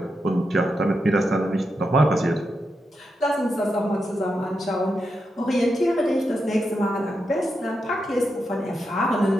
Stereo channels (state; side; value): normal; both; correlation 0.86